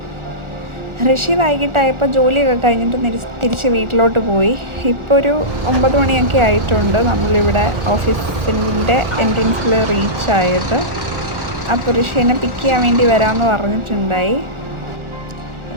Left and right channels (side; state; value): left; late; 1.4 ms